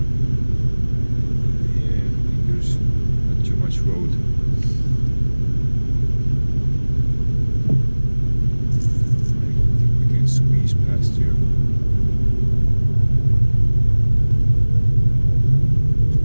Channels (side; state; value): both; inverted; correlation -1.00